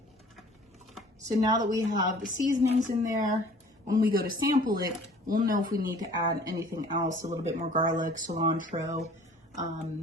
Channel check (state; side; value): normal; both; correlation 0.50